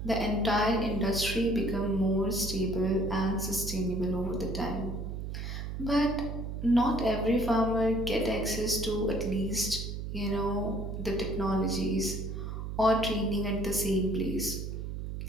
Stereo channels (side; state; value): right; noise; hum, 5 dB below the sound